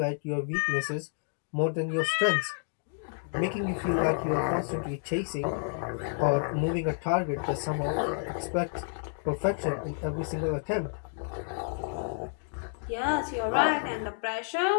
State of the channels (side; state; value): right; silent; digital silence